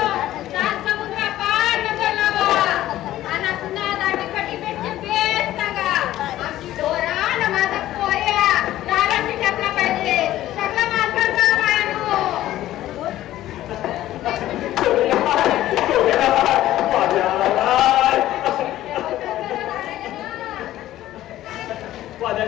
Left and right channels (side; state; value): right; quieter; 14.1 dB